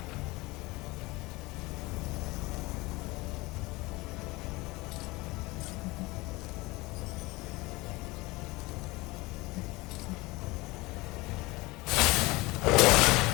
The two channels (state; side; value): quieter; right; 22.4 dB